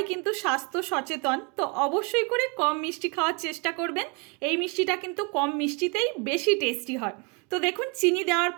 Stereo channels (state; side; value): quieter; left; 32.6 dB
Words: কিন্তু স্বাস্থ্য সচেতন, তো অবশ্যই করে কম মিষ্টি খাওয়ার চেষ্টা করবেন। এই মিষ্টিটা কিন্তু কম মিষ্টিতেই বেশি টেস্টি হয়। তো দেখুন, চিনি দেওয়ার